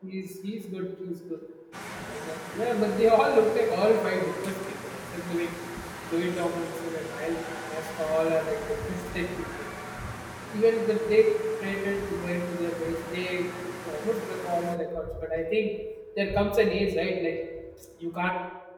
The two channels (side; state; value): both; identical; correlation 1.00